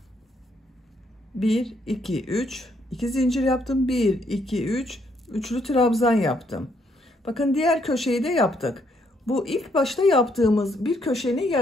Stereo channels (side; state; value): both; normal; correlation 0.72